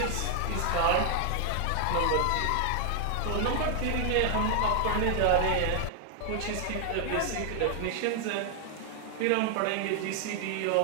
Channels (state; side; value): different; both; correlation 0.00